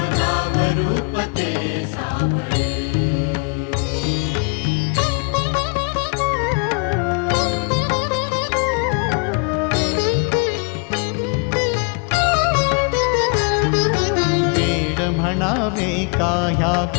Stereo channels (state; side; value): quieter; right; 35.7 dB